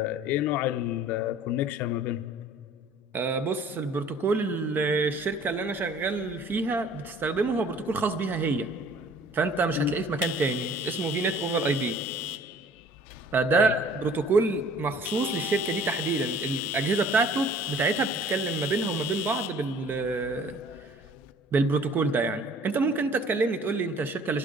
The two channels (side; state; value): both; normal; correlation 0.52